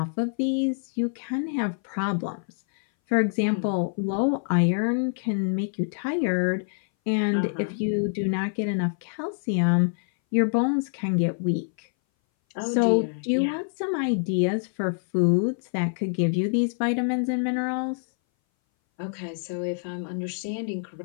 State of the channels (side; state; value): right; silent; 59 dB below the other